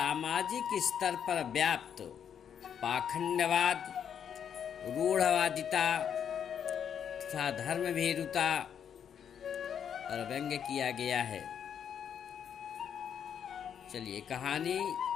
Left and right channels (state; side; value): quieter; right; 8.3 dB